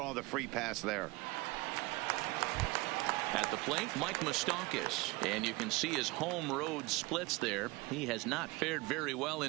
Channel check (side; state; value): left; quieter; 23.0 dB